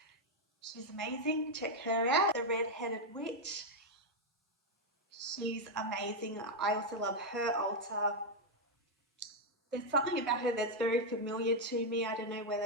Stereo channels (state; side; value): normal; both; correlation 0.01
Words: She's amazing, check her out. The Red-Headed Witch, she's amazing. I also love her altar. There's something about her that's very familiar to me. I don't know